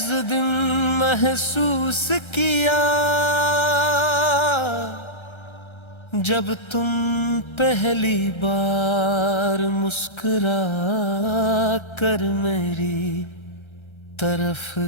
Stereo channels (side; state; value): right; late; 1.3 ms